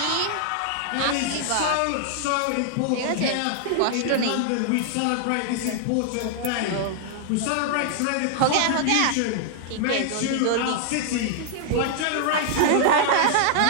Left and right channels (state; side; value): different; both; correlation -0.01